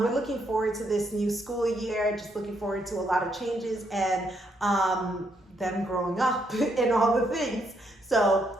looking forward to this new school year, just looking forward to a lot of changes and them growing up and all the things. So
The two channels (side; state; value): both; normal; correlation 0.75